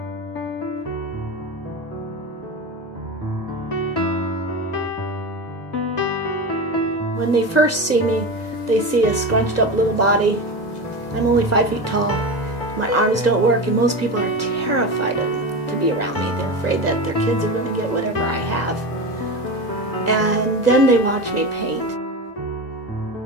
When they first see me, they see a scrunched up little body. I'm only 5 feet tall. My arms don't work, and most people are terrified to be around me. They're afraid that their kids are going to get whatever I have. And then they watch me paint.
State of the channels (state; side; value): late; right; 2.0 ms